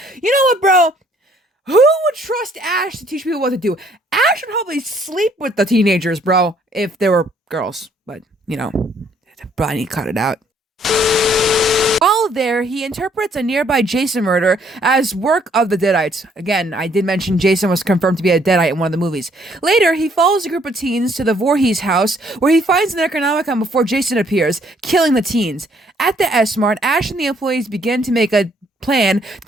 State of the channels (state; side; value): normal; both; correlation 0.65